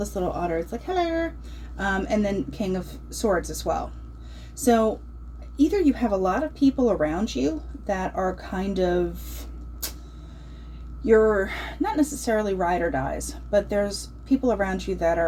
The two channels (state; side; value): identical; both; correlation 1.00